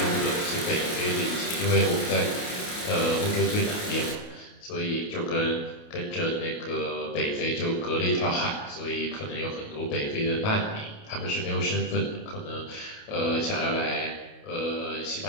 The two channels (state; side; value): late; right; 28 ms